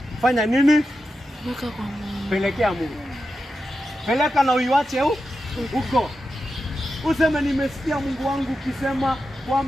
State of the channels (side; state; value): both; normal; correlation 0.90